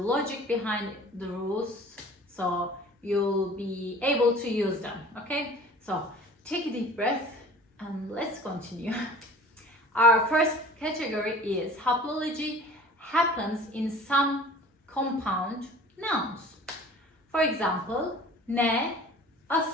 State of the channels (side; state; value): both; normal; correlation 0.45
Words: behind the rules, so you'll be able to use them. Okay, so take a deep breath and let's continue. Our first category is haplology happens in some compound nouns. For example, ne,